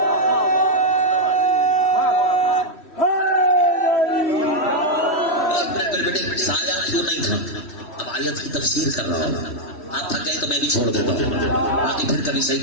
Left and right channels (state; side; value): late; right; 3.1 ms